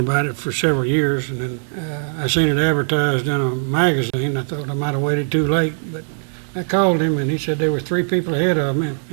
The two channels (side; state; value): left; silent; 66 dB below the other